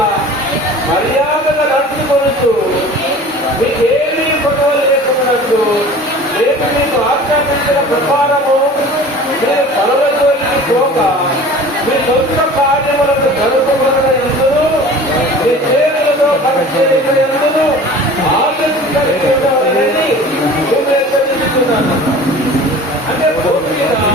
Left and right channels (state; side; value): normal; both; correlation 0.42